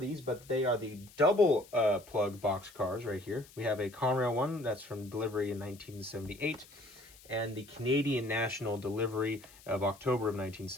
but they are the double plug box cars right here. We have a Conrail one that's from delivery in 1978 and the Canadian National delivery of October of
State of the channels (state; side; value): noise; left; hiss, 23 dB below the sound